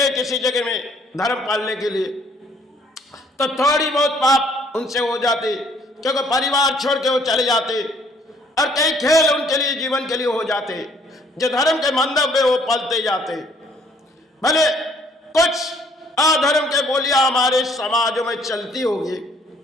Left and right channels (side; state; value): both; normal; correlation 0.62